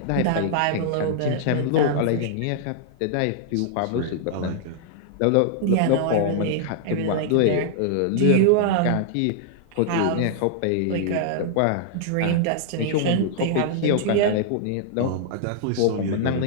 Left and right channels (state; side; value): different; both; correlation -0.01